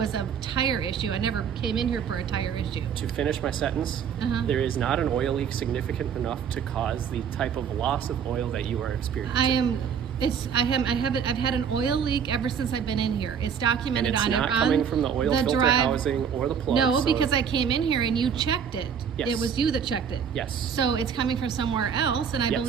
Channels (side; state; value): left; quieter; 7.4 dB